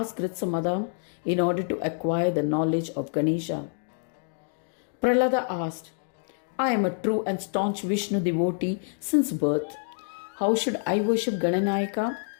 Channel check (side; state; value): right; silent; digital silence